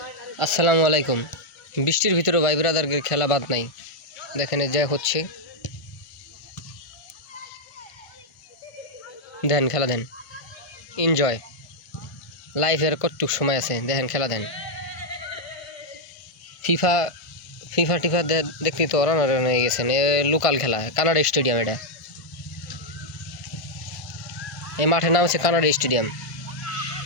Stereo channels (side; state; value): right; late; 1.5 ms